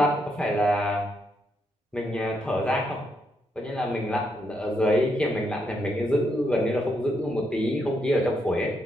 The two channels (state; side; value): normal; both; correlation 0.79